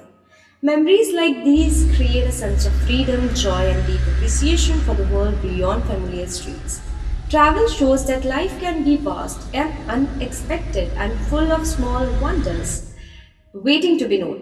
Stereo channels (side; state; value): both; identical; correlation 1.00